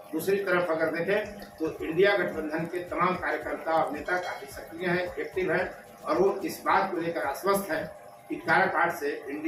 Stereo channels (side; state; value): both; identical; correlation 1.00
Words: दूसरी तरफ अगर देखें तो इंडिया गठबंधन के तमाम कार्यकर्ता और नेता काफी सक्रिय हैं, एक्टिव हैं और वो इस बात को लेकर आश्वस्त है कि काराकाट से